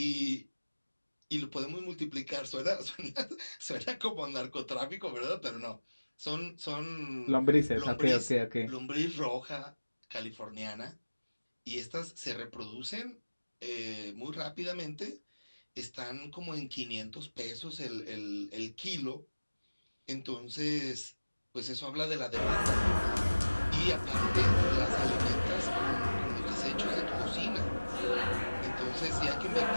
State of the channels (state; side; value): inverted; both; correlation -1.00